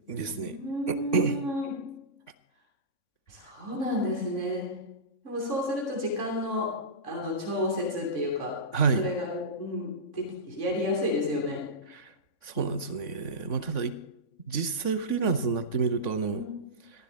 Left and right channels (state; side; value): late; right; 3.5 ms